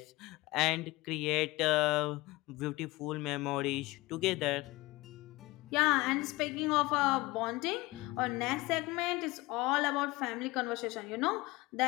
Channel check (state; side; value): quieter; right; 21.1 dB